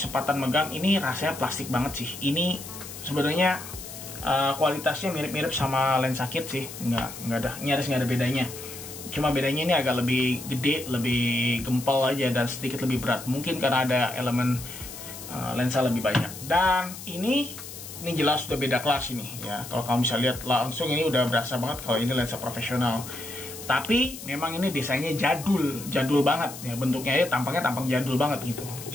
megang, ini rasanya plastik banget sih. Ini sebenarnya kualitasnya mirip-mirip sama lensa kit sih, nggak ada, nyaris nggak ada bedanya. Cuma bedanya ini agak lebih gede, lebih gempal aja, dan sedikit lebih berat. Mungkin karena ada elemen lensa lebih banyak. Dan ini jelas sudah beda kelas ini ya. Kalau kamu bisa lihat langsung, ini udah berasa banget kalau ini lensa profesional. Tapi memang ini desainnya jadul banget ya, bentuknya ya, tampang jadul banget gitu.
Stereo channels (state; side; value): noise; left; hiss, 12 dB below the sound